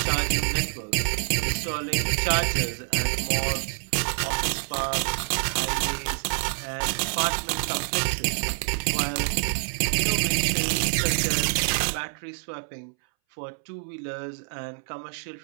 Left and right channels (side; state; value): left; silent; 61 dB below the other